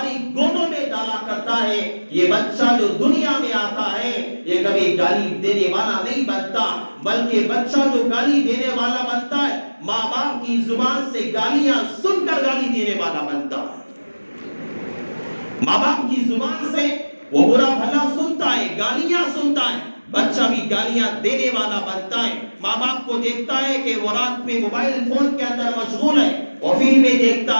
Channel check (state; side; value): inverted; both; correlation -1.00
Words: گودوں میں ڈالا کرتا ہے، یہ بچہ جو دنیا میں آتا ہے یہ کبھی گالی دینے والا نہیں بنتا، بلکہ بچہ جو گالی دینے والا بنتا ہے ماں باپ کی زبان سے گالیاں سن کر گالی دینے والا بنتا ہے. ماں باپ کی زبان سے وہ برا بھلا سنتا ہے، گالیاں سنتا ہے، بچہ بھی گالیاں دینے والا بنتا ہے. ماں باپ کو دیکھتا ہے کہ وہ رات میں موبائل فون کے اندر مشغول ہے، وہ فلمیں